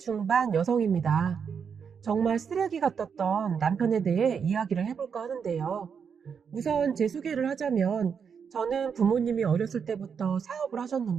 여성입니다. 정말 쓰레기 같았던 남편에 대해 이야기를 해볼까 하는데요. 우선 제 소개를 하자면 저는 부모님이 어렸을 때부터 사업을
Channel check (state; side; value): quieter; left; 6.7 dB